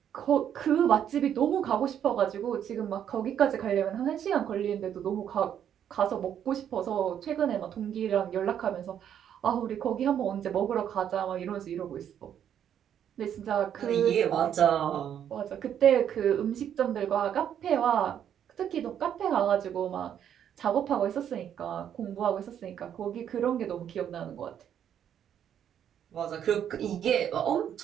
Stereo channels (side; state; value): left; quieter; 9.4 dB